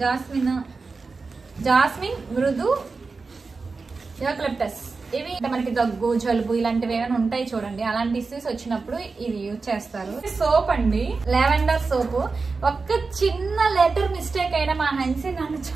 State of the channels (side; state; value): left; quieter; 4.3 dB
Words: జాస్మిన్, మృదు, యూకలిప్టస్. ఇవి మనకి దగ్గు, జలుబు ఇలాంటివి ఏమైనా ఉంటాయి చూడండి, అలాంటి ఇష్యూస్ వచ్చినప్పుడు ఇది యూజ్ చేస్తారు. సోప్ అండి, లావెండర్ సోప్. ఒక్క చిన్న లెటర్ మిస్టేక్ అయినా మా హన్సీ నన్ను